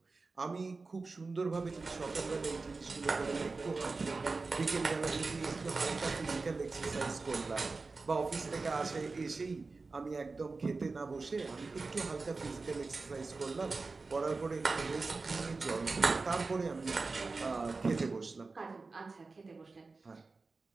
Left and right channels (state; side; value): quieter; left; 3.9 dB